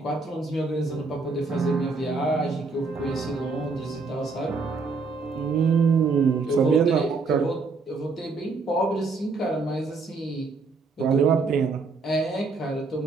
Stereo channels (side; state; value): left; quieter; 4.2 dB